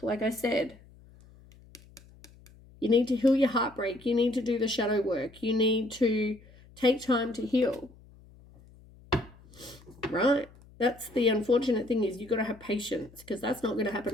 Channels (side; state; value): left; noise; hum, 24 dB below the sound